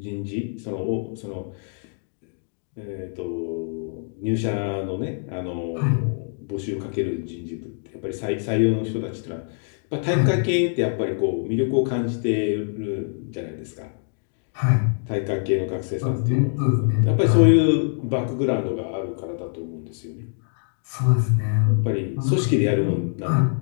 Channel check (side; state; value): right; silent; digital silence